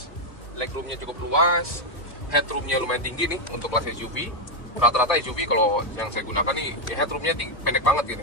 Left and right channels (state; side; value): late; right; 1.8 ms